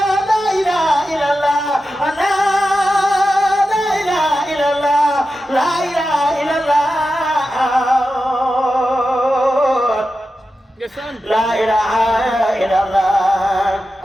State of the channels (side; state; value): both; normal; correlation 0.91